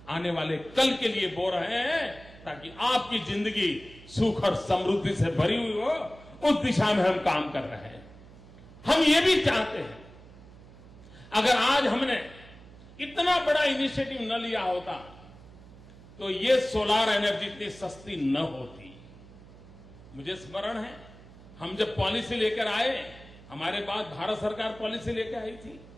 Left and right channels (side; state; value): right; noise; hum, 20 dB below the sound